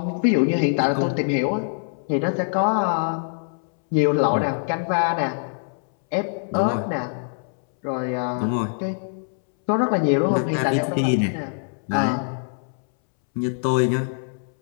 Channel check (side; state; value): right; silent; 63 dB below the other